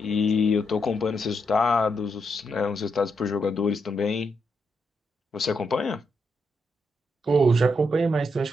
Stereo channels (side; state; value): both; normal; correlation 0.80